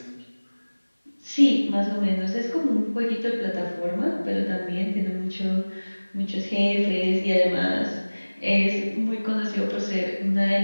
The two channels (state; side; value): inverted; both; correlation -1.00